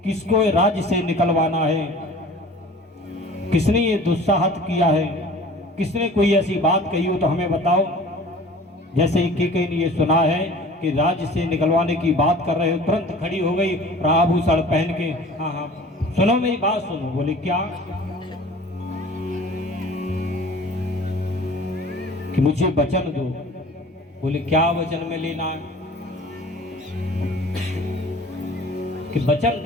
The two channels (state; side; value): normal; both; correlation 0.45